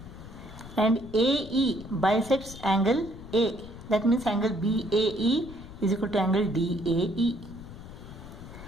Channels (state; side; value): noise; left; rumble, 14 dB below the sound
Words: and AE bisects angle A. That means angle BAE is equal to angle DAE.